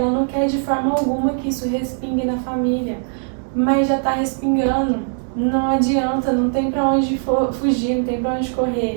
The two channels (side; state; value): left; silent; digital silence